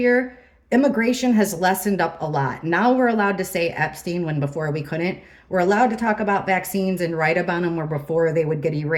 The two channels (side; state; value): both; identical; correlation 1.00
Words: immigration has lessened up a lot. Now we're allowed to say Epstein when before we couldn't. We're allowed to talk about vaccines and write about them where before they would get